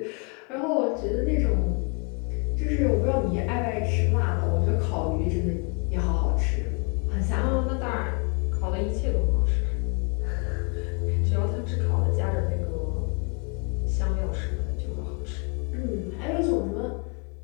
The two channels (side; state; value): right; quieter; 35.3 dB